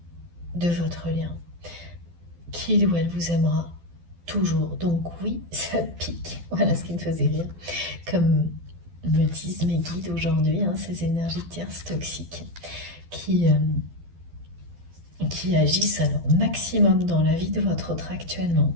de votre lien, qu'il ou elle vous aimera toujours. Donc oui, ça pique. Voilà ce qui me faisait rire. Comme me disent mes guides aujourd'hui, ces énergies tierces toxiques qui agissent à leur maximum dans la vie de votre autre actuellement.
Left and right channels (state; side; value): late; left; 12 ms